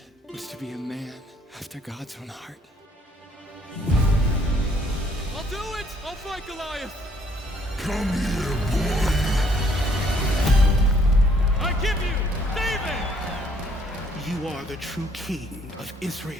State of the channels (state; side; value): normal; both; correlation 0.65